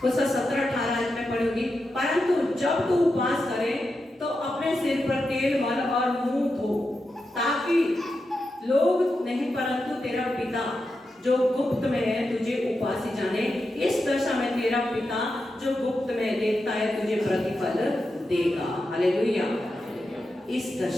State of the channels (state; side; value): normal; both; correlation 0.88